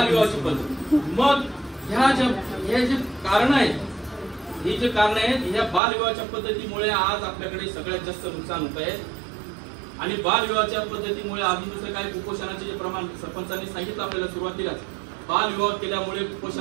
पद्धत. मग हे जे कारण आहेत, ही जे कारण आहेत, ह्या बालविवाहाच्या पद्धतीमुळे आज आपल्याकडे सगळ्यात जास्त नुकसान होत आहे. आणि बालविवाहाच्या पद्धतीमुळे अजून दुसरं काय, कुपोषणाचे जे प्रमाण सरपंचांनी सांगितलं आपल्याला सुरुवातीलाच, बालविवाह केल्यामुळे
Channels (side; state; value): left; drops out; at 5.8 s